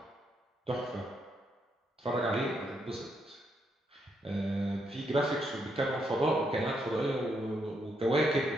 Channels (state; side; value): normal; both; correlation 0.78